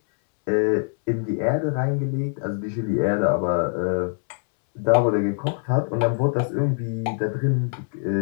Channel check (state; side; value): silent; right; 63 dB below the other